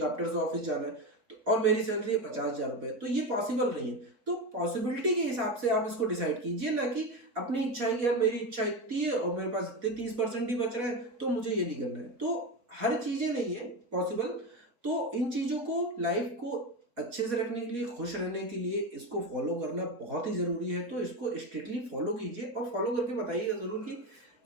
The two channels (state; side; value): late; left; 4.1 ms